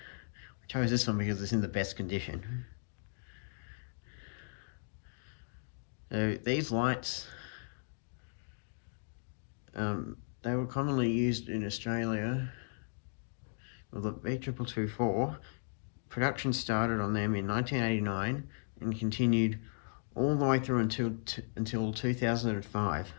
I chose this one because it's in the best condition. So these lights, they were commonly used in Australia. Well, the B2224, production started on them in 1989 and continued all the way through until 2005.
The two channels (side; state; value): right; silent; digital silence